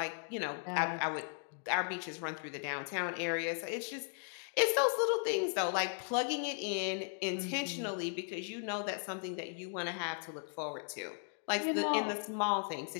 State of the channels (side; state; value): right; silent; 53 dB below the other